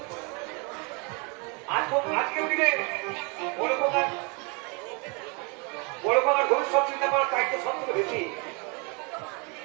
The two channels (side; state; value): left; quieter; 32.1 dB